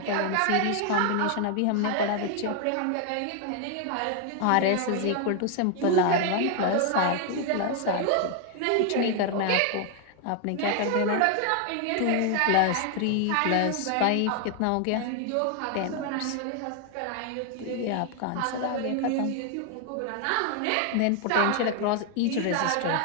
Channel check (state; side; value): different; both; correlation 0.00